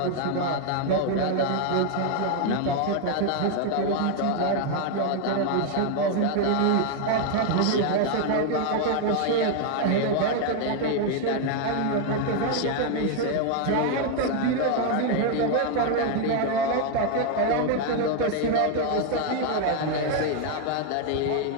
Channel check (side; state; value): both; different; correlation 0.00